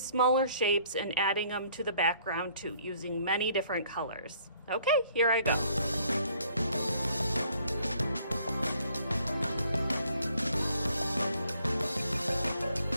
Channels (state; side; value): inverted; both; correlation -0.62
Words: shapes and adding them to the background too, using many different colors. Okay, here I go.